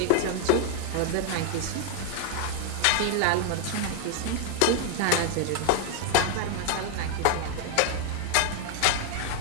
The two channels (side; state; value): both; different; correlation 0.00